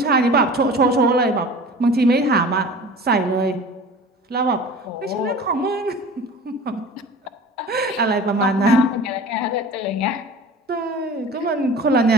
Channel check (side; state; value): both; normal; correlation 0.40